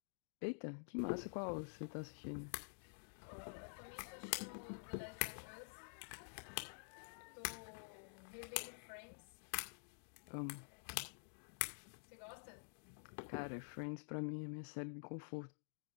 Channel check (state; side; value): silent; right; digital silence